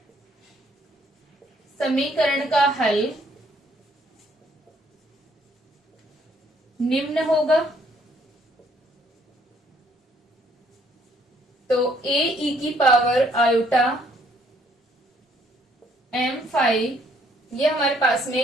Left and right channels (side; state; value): both; normal; correlation 0.66